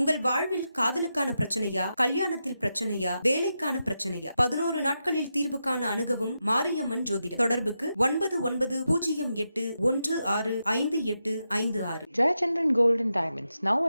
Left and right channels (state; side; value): inverted; both; correlation -0.87